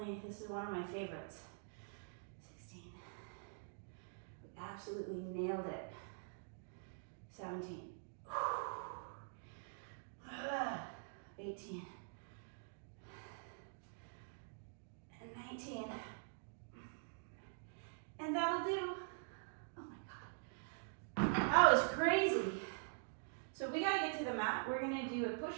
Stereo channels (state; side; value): silent; left; digital silence